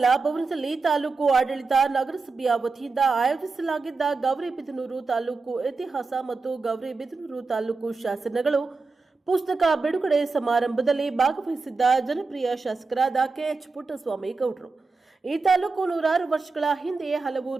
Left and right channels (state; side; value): quieter; left; 4.1 dB